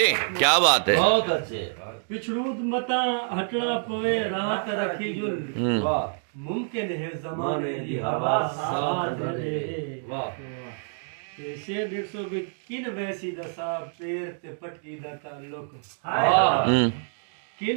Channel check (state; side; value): silent; left; digital silence